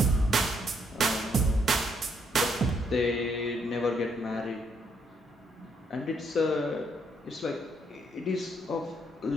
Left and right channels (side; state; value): both; normal; correlation 0.73